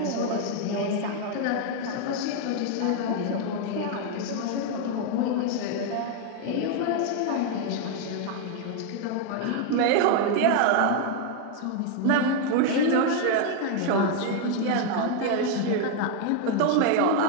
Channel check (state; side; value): different; both; correlation 0.00